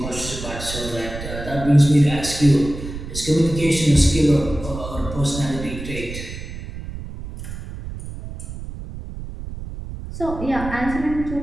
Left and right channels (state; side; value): noise; right; rumble, 9 dB below the sound